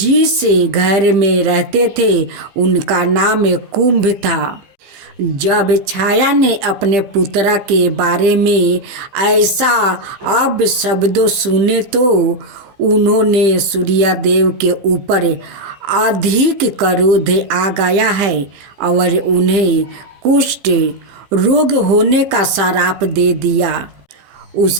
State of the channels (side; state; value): left; late; 15 ms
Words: घर में रहते थे उनका नाम कुंभ था। जब छाया ने अपने पुत्र के बारे में ऐसा अब शब्दों सुने तो उन्होंने सूर्य देव के ऊपर अधिक क्रोध आ गया है और उन्हें कुष्ठ रोग होने का श्राप दे दिया।